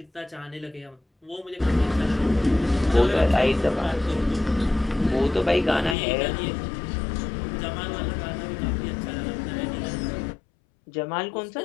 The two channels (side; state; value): right; drops out; at 6.0 s